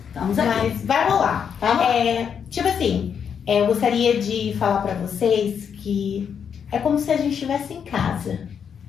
Estamos aqui. Mas vai rolar. Tipo assim, eu gostaria de falar para vocês que é como se a gente estivesse em casa.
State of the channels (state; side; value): quieter; right; 7.4 dB